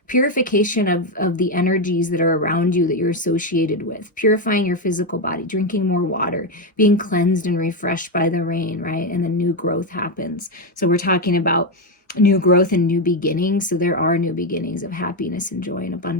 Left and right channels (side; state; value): both; normal; correlation 0.07